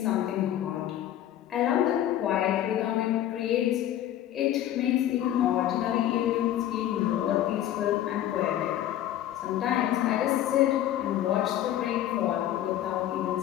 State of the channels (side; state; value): right; quieter; 12.1 dB